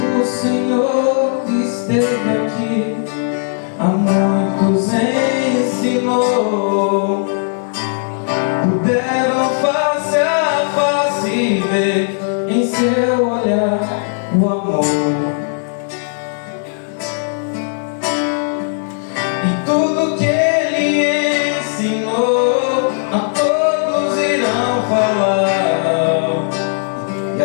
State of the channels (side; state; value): right; silent; digital silence